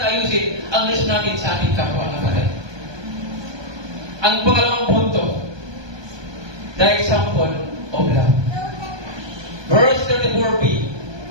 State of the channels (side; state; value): left; late; 1.2 ms